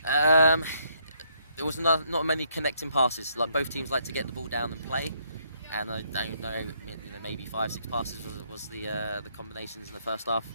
There was not many connecting passes. Like both teams like to get the ball down and play, and I don't know, maybe 5-6 passes was the combinations in the first half,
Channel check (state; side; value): inverted; both; correlation -0.71